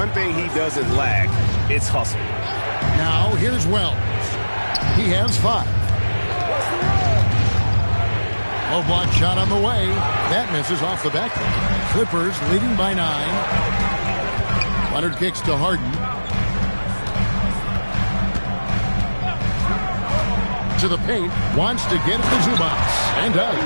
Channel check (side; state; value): both; inverted; correlation -1.00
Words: thing he doesn't lack, it's hustle. Now here's Wells. He has 5. Low block shot on the way. That misses off the back. Clippers leading by 9. Leonard kicks to Harden. To the paint. Wants to get it to Zubac. And does.